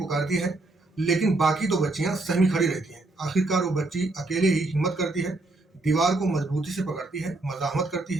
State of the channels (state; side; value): quieter; left; 3.0 dB